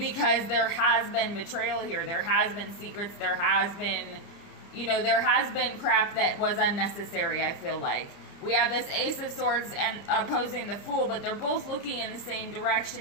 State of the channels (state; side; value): late; right; 30 ms